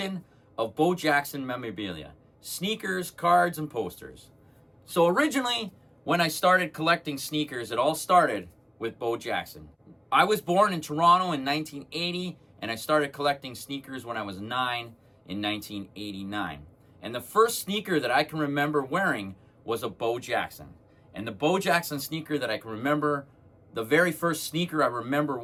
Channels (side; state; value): both; identical; correlation 1.00